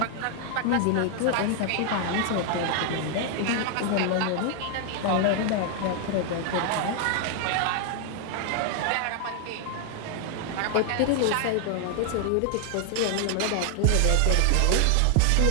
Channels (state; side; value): different; both; correlation 0.00